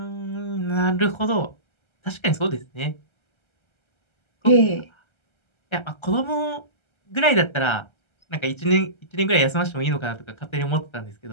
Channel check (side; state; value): right; late; 1.3 ms